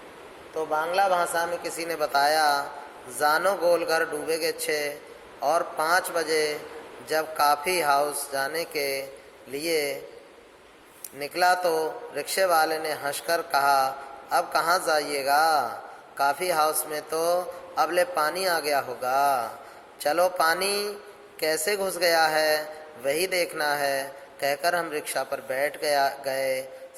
तो बांग्ला भाषा में किसी ने बताया जानो गोलघर डूबेगे छे। और 5 बजे जब काफ़ी हाउस जाने के लिए निकला तो रिक्शे वाले ने हंसकर कहा, अब कहाँ जाइएगा? काफ़ी हाउस में तो अब ले पानी आ गया होगा। चलो पानी कैसे घुस गया है वही देखना है, कहकर हम रिक्शा पर बैठ गए।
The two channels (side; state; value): both; identical; correlation 1.00